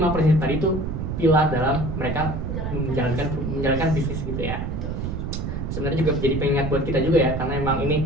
prinsip tadi itu pilar dalam mereka menjalankan bisnis gitu ya. Sebenarnya juga jadi pengingat buat kita juga ya, karena emang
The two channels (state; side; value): noise; right; rumble, 3 dB below the sound